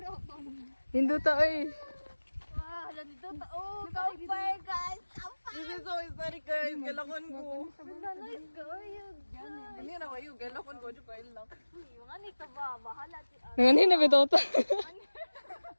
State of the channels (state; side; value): inverted; both; correlation -1.00